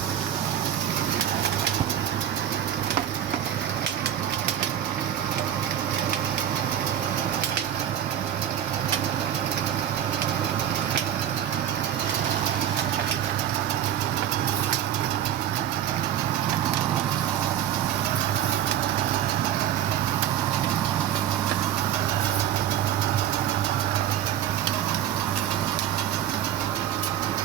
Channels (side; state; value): left; quieter; 10.5 dB